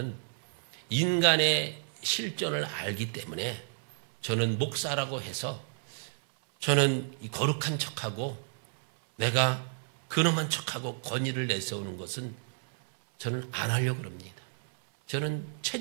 인간의 실존을 알기 때문에 저는 목사라고 해서 저는 이 거룩한 척하고 내가 근엄한 척하고 권위를 내세우는 것은 저는 안 하려고 합니다. 저는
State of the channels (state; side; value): silent; left; digital silence